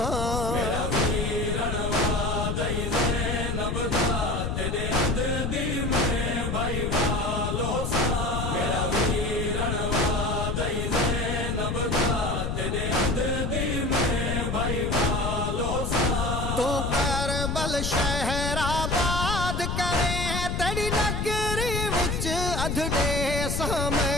मेरा वीरण वादई ज़ैनब दा तेरे अध दी में भाई वालों सा मेरा वीरण वादई ज़ैनब दा तेरे अध दी में भाई वालों सा तू करबल शहराबाद करे तेरी नगरी विच अधडे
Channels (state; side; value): noise; left; rumble, 1 dB below the sound